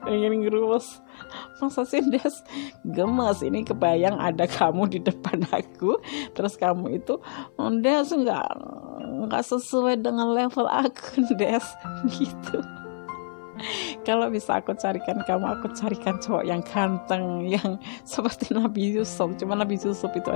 pengen ngerus. Masa sih Des gemas? Ini kebayang ada kamu di depan aku, terus kamu itu Des nggak sesuai dengan level aku, Des gitu. Kalau bisa aku carikan cowok yang ganteng, yang seperti Nabi Yusuf. Cuma Nabi Yusuf itu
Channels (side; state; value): right; silent; 55 dB below the other